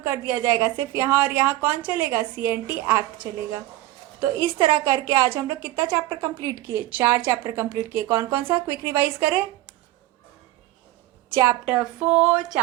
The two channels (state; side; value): quieter; left; 16.6 dB